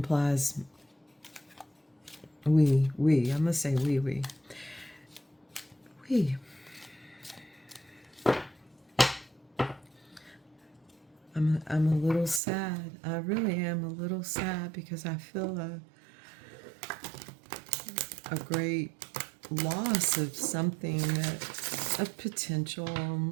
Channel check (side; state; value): left; drops out; at 12.4 s